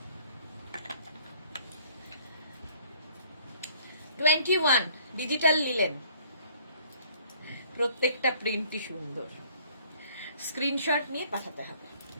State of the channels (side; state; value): both; inverted; correlation -0.59